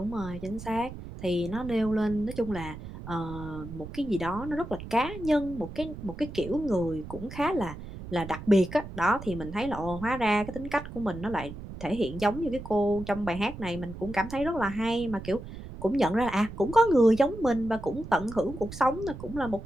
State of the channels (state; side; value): noise; right; rumble, 11 dB below the sound